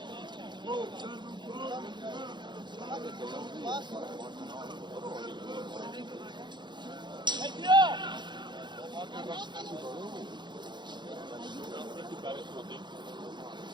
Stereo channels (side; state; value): left; late; 0.22 ms